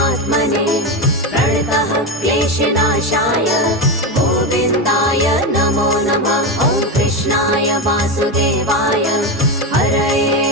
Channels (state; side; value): normal; both; correlation 0.15